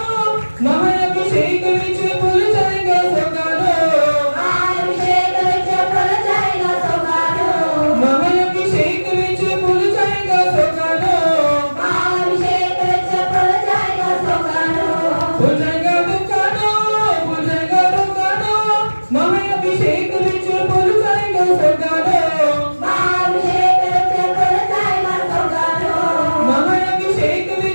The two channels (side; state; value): both; inverted; correlation -1.00